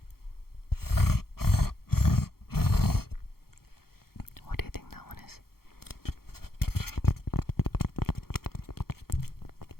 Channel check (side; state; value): right; late; 0.94 ms